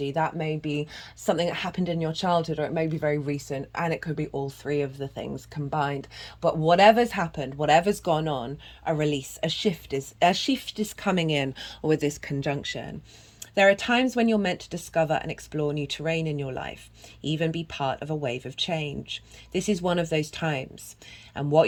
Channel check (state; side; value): identical; both; correlation 1.00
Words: that may be something that happened in your childhood, or it may be very recent, and it could be all three of the things combined. But whatever's happened, whatever's gone on, a release, a shift is coming in with this conjunction. There are times when you're meant to discover and explore new terrain in your life, even be part of a wave of change. This is one of those times, and